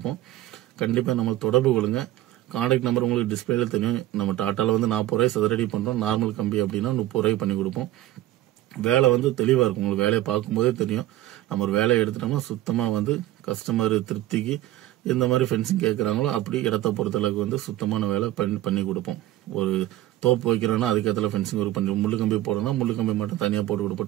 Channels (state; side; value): quieter; left; 14.9 dB